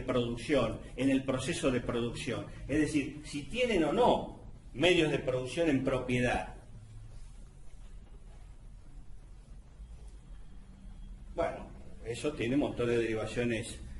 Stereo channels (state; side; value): identical; both; correlation 1.00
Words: en el proceso de producción. Es decir, si tienen o no medios de producción en propiedad. Bueno, eso tiene un montón de derivaciones